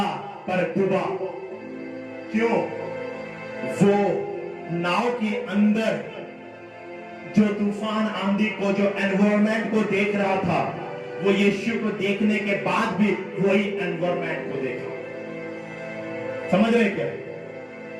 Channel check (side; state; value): both; identical; correlation 1.00